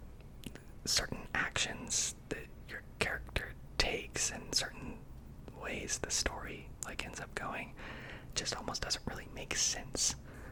certain actions that your character takes and certain ways the story like ends up going just almost doesn't really make sense.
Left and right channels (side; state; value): both; identical; correlation 1.00